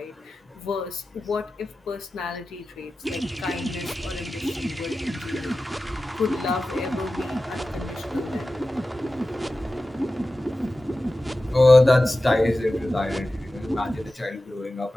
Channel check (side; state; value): both; normal; correlation 0.94